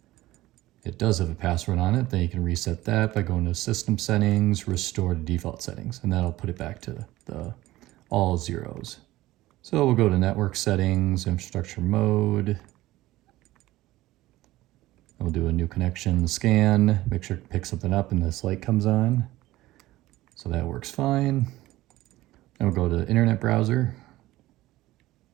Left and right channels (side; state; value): left; quieter; 17.0 dB